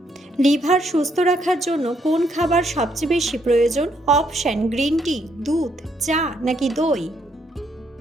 লিভার সুস্থ রাখার জন্য কোন খাবার সবচেয়ে বেশি প্রয়োজন? অপশন গ্রিন টি, দুধ, চা নাকি দই?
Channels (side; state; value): both; normal; correlation 0.73